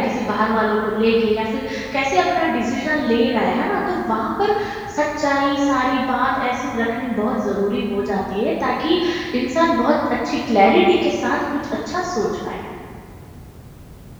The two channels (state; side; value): identical; both; correlation 1.00